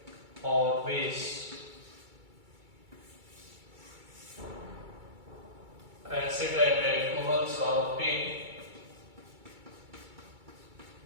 or base. Acid and alcohols are obtained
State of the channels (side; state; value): left; late; 2.3 ms